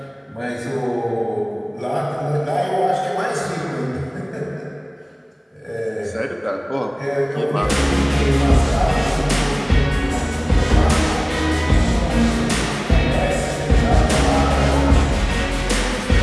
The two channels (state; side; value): identical; both; correlation 1.00